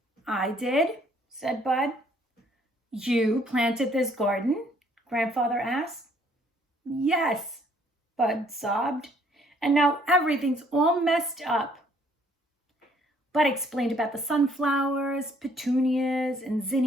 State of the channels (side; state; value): both; normal; correlation 0.63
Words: I did, said Bud. You planted this garden? Grandfather asked. Yes, Bud sobbed, and now everything's all messed up. Bud explained about the sunflowers, petunias, and